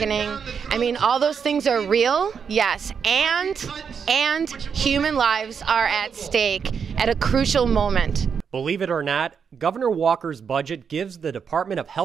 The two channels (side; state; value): left; quieter; 6.6 dB